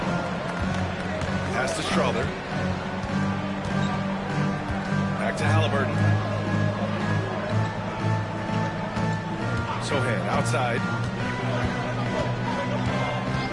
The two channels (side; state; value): both; identical; correlation 1.00